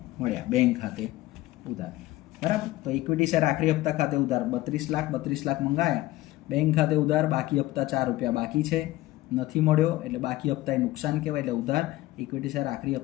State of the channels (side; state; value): right; quieter; 16.9 dB